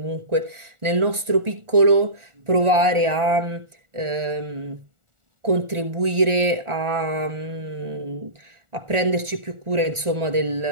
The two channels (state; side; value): late; left; 1.4 ms